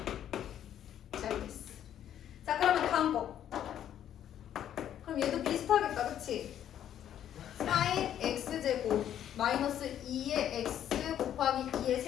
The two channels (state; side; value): quieter; right; 10.5 dB